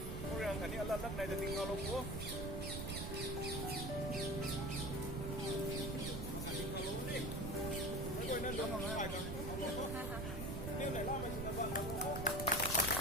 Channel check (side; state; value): right; noise; rumble, 4 dB below the sound